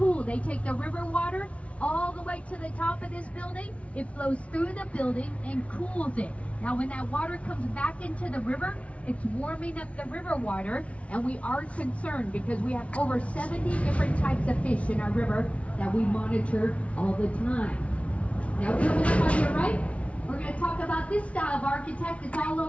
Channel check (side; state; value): right; late; 0.063 ms